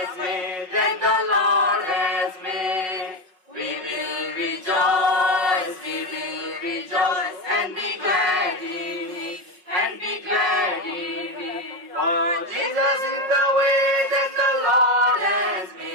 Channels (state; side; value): late; left; 5.5 ms